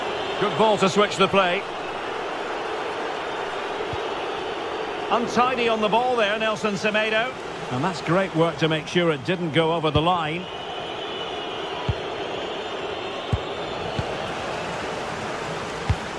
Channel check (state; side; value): identical; both; correlation 1.00